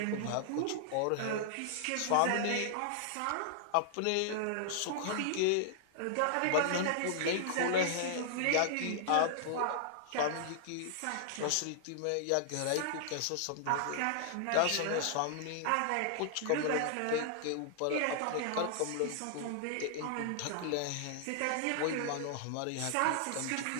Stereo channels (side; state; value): both; different; correlation -0.01